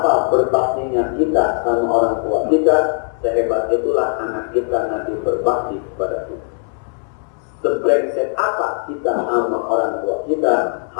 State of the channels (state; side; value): silent; right; 58 dB below the other